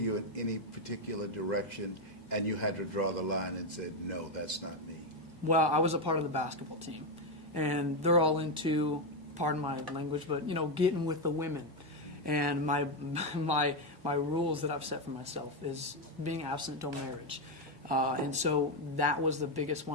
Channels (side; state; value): both; normal; correlation 0.06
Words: in any particular direction, and you had to draw the line and said, no, that's not me? Well, I was a part of the basketball team, and they're all into, pardon my language, but getting with the women. And my rules that I've set for myself is being abstinent till marriage. And so that was the biggest